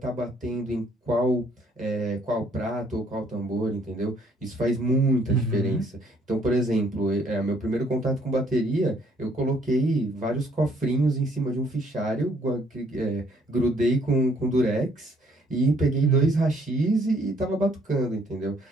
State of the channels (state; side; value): normal; both; correlation 0.65